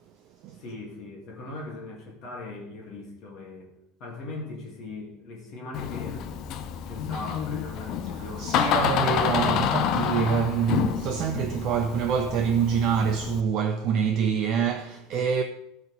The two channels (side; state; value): both; normal; correlation 0.37